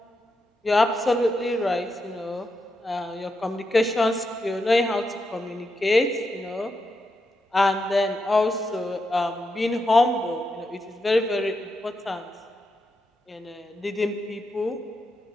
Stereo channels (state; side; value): normal; both; correlation 0.85